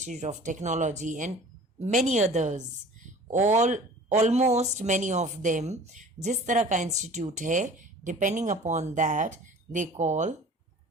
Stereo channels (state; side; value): normal; both; correlation 0.44